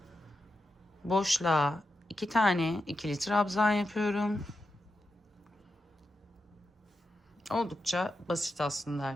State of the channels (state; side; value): normal; both; correlation 0.88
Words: Boşluğa 2 tane ikili trabzan yapıyorum. Oldukça basit aslında